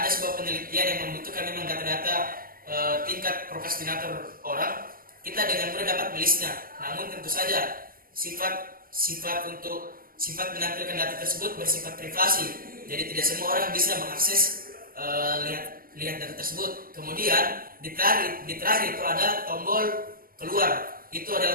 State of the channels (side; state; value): left; late; 0.42 ms